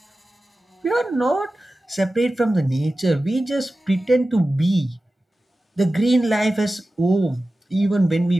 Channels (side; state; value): both; normal; correlation 0.95